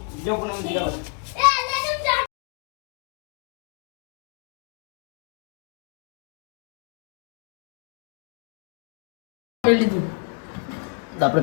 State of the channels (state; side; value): quieter; right; 39.2 dB